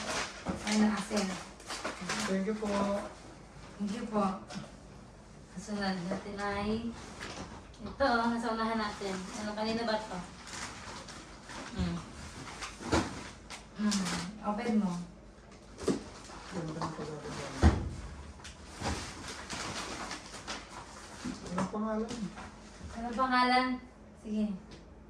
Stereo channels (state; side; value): identical; both; correlation 1.00